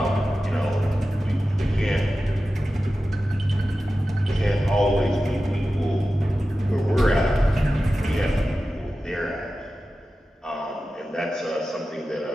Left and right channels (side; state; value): both; normal; correlation 0.94